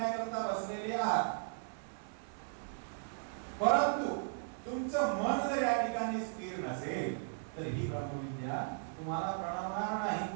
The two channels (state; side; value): silent; left; digital silence